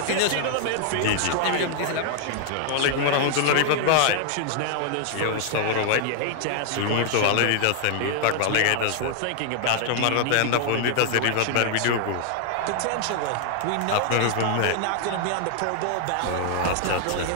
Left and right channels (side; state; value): both; different; correlation 0.00